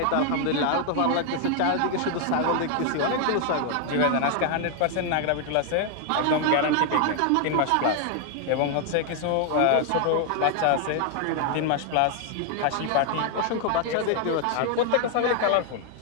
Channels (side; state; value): both; different; correlation 0.00